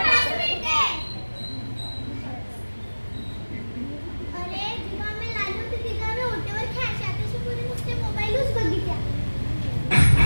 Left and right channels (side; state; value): both; inverted; correlation -1.00